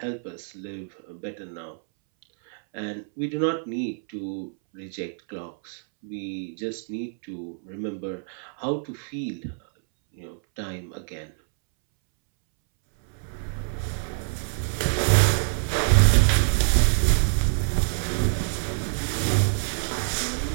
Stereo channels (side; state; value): left; silent; 61 dB below the other